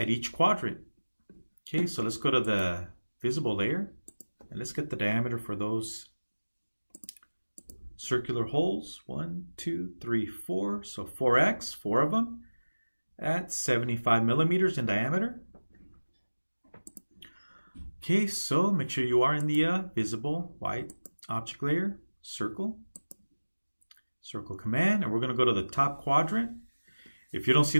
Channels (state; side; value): inverted; both; correlation -1.00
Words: each quadrant. Okay, so let's go to the visible layer and let's get the diameter for those circular holes. 1, 2, 3, 4. So 4x, 4 of them at 75 millimeters in diameter. Okay, so make sure you are in the visible white object layer, circle. Circle command, and we're going to go to the top quadrant. If you don't see